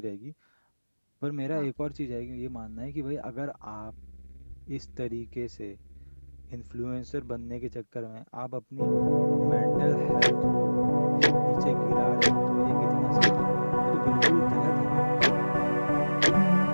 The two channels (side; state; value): both; inverted; correlation -1.00